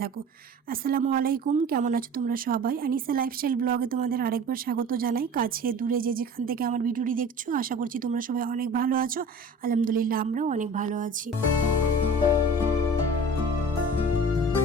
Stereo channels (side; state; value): both; normal; correlation 0.41